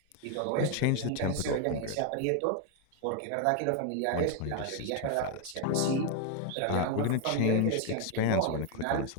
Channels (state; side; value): different; both; correlation 0.01